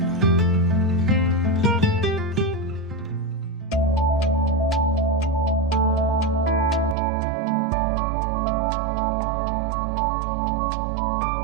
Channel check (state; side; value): drops out; left; at 7.0 s